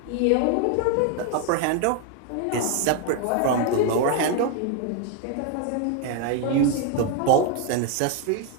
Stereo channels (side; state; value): both; different; correlation 0.01